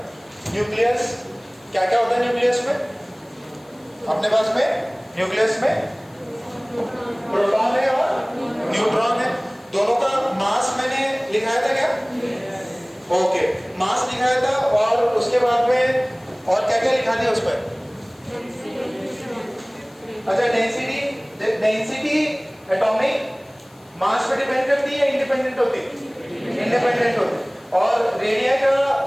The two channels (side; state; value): left; noise; hiss, 30 dB below the sound